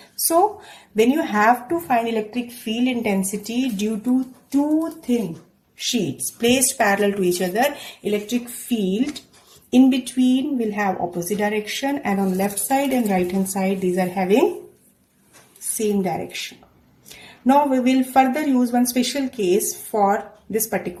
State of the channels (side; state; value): both; identical; correlation 1.00